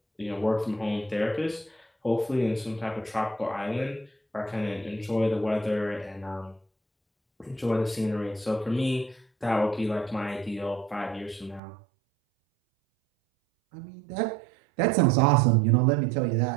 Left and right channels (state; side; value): drops out; left; at 11.6 s